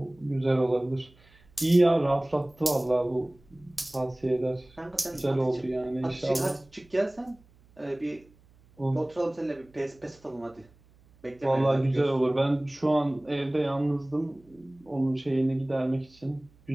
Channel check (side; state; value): right; noise; hum, 29 dB below the sound